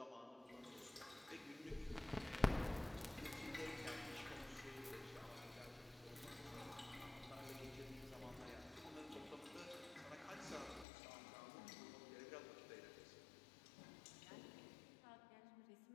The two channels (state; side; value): drops out; right; at 10.9 s